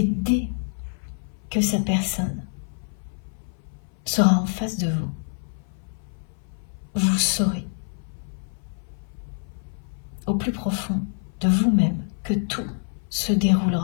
dès que cette personne sera en face de vous, vous saurez au plus profond de vous-même que tout se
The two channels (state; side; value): silent; right; 58 dB below the other